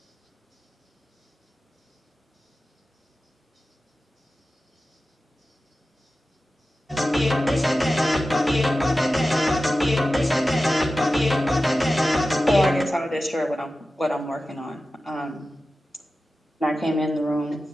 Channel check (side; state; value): both; normal; correlation 0.94